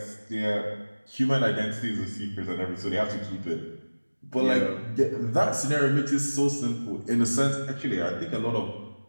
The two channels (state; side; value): inverted; both; correlation -1.00